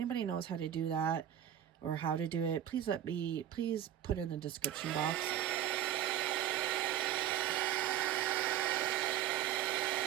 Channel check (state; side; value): quieter; left; 11.1 dB